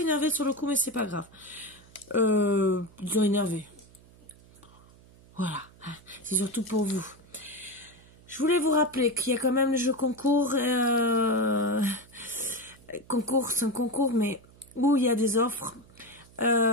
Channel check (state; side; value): noise; right; hum, 25 dB below the sound